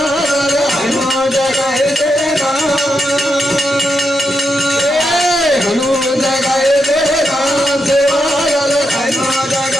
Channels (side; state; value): both; normal; correlation 0.84